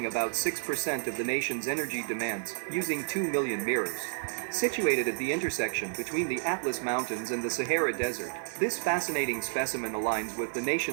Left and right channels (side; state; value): left; silent; digital silence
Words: about 6% of the nation's energy demands using 2 million mirrors. Situated at the intersection between the Atlas Mountains and the Sahara Desert, this fascinating specimen aligns with the